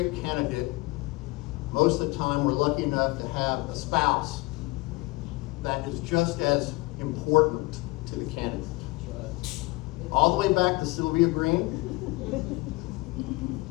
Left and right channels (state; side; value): quieter; right; 23.1 dB